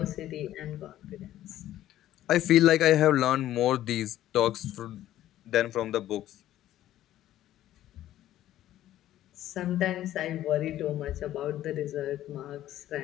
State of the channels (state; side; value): quieter; right; 13.2 dB